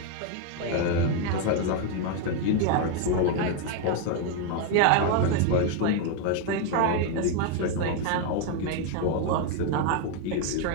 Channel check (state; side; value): different; both; correlation 0.01